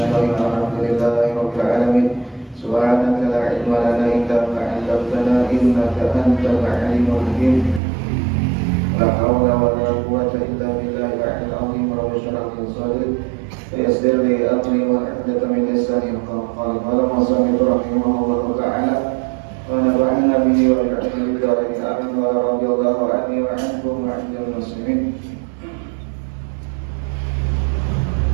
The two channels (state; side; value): drops out; left; at 7.8 s